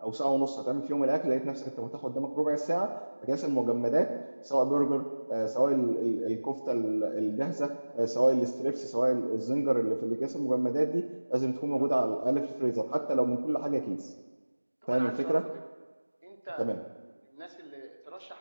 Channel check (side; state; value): both; inverted; correlation -1.00